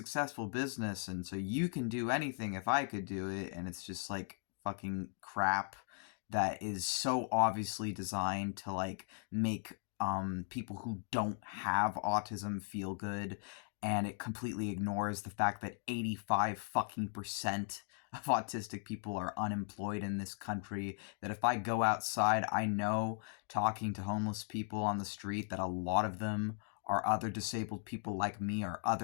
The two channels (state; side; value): silent; right; 53 dB below the other